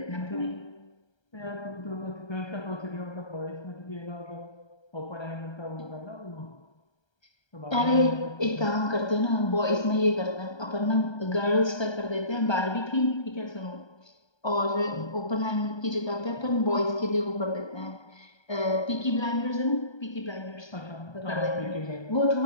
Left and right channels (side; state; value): right; late; 1.3 ms